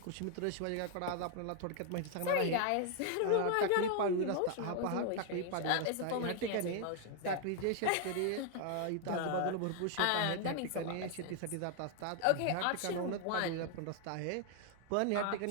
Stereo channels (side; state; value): both; different; correlation 0.00